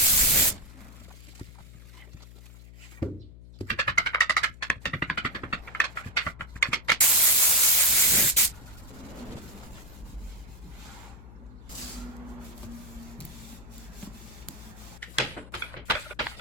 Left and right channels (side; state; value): left; noise; hum, 18 dB below the sound